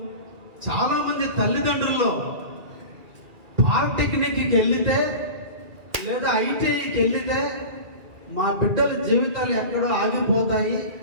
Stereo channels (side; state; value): left; late; 2.4 ms